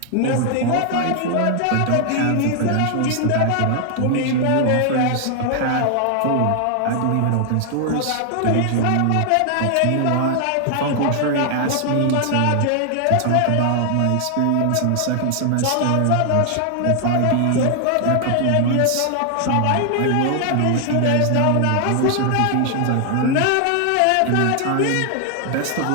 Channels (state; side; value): different; both; correlation 0.00